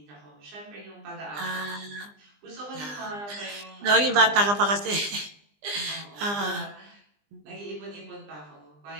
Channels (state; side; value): late; left; 20 ms